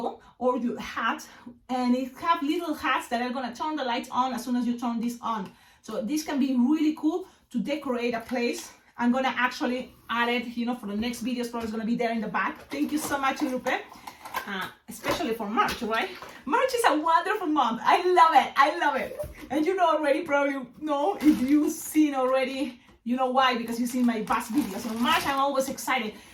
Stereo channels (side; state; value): both; identical; correlation 1.00